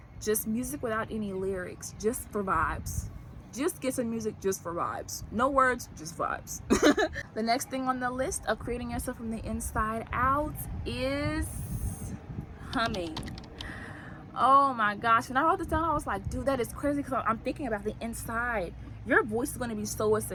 just music without any lyrics, just for vibes. Just get some music just for vibes. No words, just vibes. The next thing on the list of creating yourself from the inside out is humming. Oh my gosh, when I wrote this down, I was like, dude, that is crazy, because I'm thinking about the inside. Your voice is going to be so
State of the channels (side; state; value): both; identical; correlation 1.00